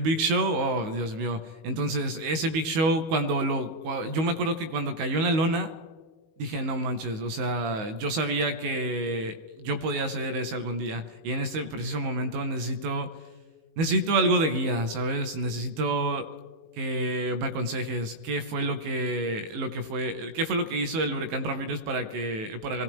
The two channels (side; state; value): left; late; 19 ms